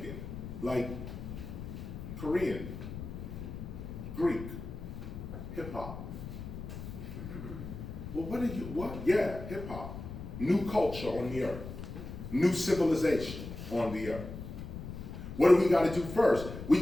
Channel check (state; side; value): noise; left; rumble, 9 dB below the sound